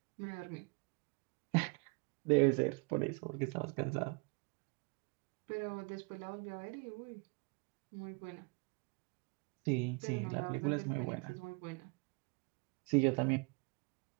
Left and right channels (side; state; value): left; quieter; 31.0 dB